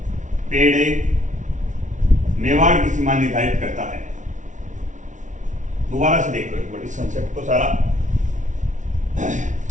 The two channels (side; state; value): left; late; 0.36 ms